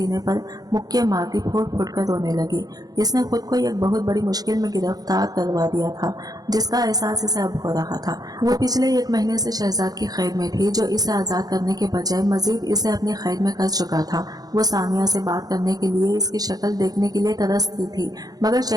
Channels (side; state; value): left; late; 0.19 ms